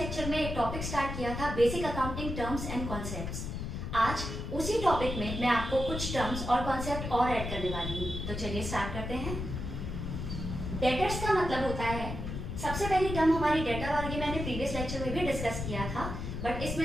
में एक टॉपिक स्टार्ट किया था, basic accounting terms and concepts. आज उसी टॉपिक में मैं आपको कुछ टर्म्स और कॉन्सेप्ट और ऐड करने वाली हूँ। तो चलिए स्टार्ट करते हैं। डेटर्स का मतलब होता है, सबसे पहली टर्म हमारी डेटर, और ये मैंने प्रीवियस लेक्चर में भी डिस्कस किया था, बट इसमें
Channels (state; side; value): noise; left; rumble, 5 dB below the sound